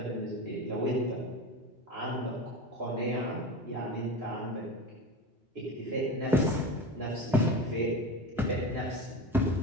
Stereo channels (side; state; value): both; normal; correlation 0.27